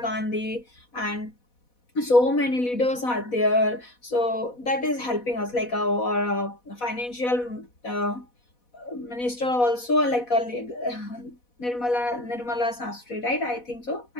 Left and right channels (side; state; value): right; late; 4.1 ms